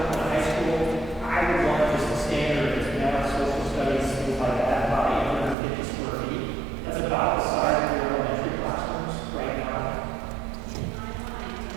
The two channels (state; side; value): drops out; left; at 5.6 s